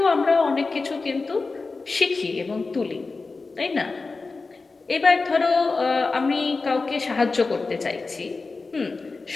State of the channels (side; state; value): right; quieter; 3.9 dB